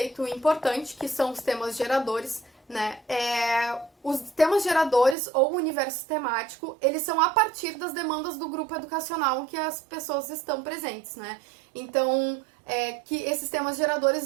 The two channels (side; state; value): left; drops out; at 5.2 s